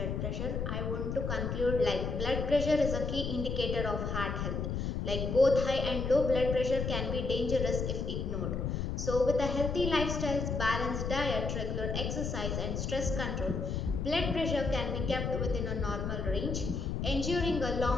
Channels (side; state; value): left; noise; rumble, 2 dB below the sound